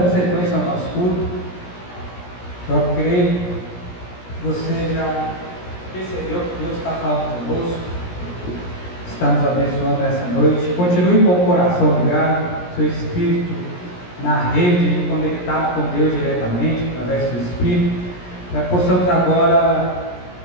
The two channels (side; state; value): right; late; 17 ms